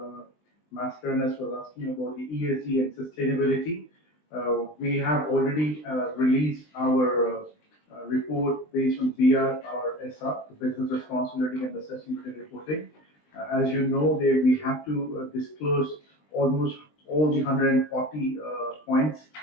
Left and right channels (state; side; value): late; right; 20 ms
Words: Mascarenas was asking about the ESG and sustainability, we have already released our report based on BR, our SR, the Business Responsibility and the Sustainability Reporting. As you know, we have to disclose almost all the 140 points,